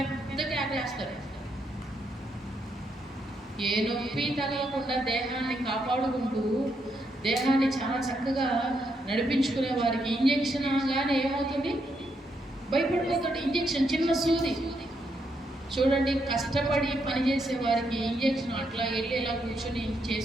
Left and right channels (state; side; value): normal; both; correlation 0.79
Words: ఆగేస్తారు. ఏ నొప్పి తగలకుండా దేహాన్ని కాపాడుకుంటూ దేహాన్ని చాలా చక్కగా నడిపించుకునే వారికి ఇంజెక్షన్ అనగానే ఏమవుతుంది? భయపడిపోతాడు. ఇంజెక్షన్ చిన్న సూది. చూడండి, కష్టపడి పనిచేసే వారికి ఇంజెక్షన్ అట్లా వెళ్ళి ఇలా కూర్చొని